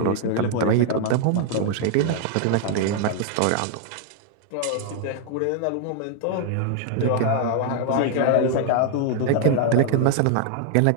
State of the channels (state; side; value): different; both; correlation 0.00